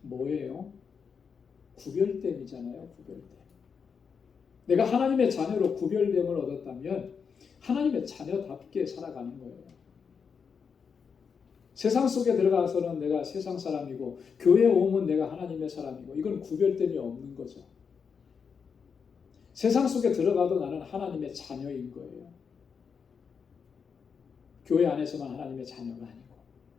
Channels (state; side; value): quieter; right; 6.2 dB